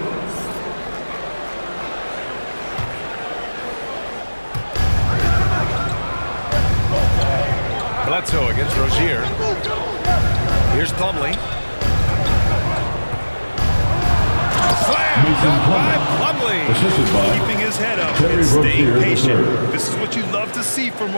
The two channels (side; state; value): both; inverted; correlation -1.00